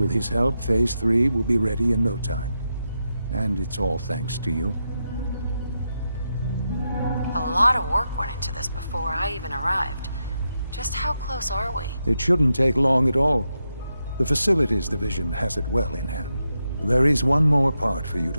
his help, Phase 3 will be ready in no time. And it's all thanks to you. A lot of work went into this before I even arrived. Just how close are we? It shouldn't take long at all. The Facilities Division has it well in hand. There is one more part for you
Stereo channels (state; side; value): inverted; both; correlation -0.86